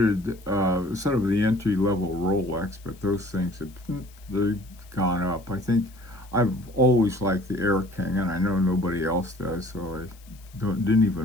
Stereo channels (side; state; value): left; noise; hiss, 26 dB below the sound